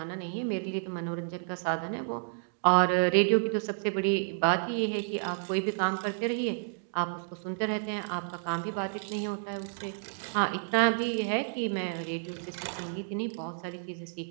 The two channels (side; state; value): left; silent; digital silence